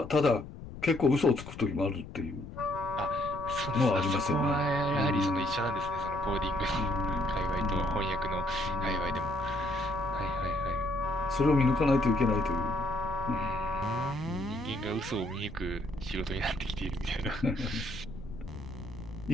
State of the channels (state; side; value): noise; left; rumble, 12 dB below the sound